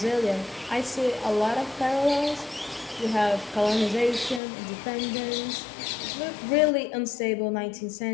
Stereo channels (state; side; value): drops out; right; at 4.4 s